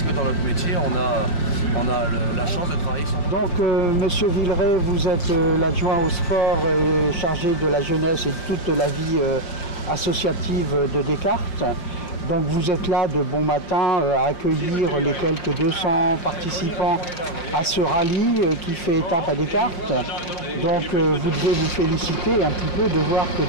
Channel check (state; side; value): late; right; 5.7 ms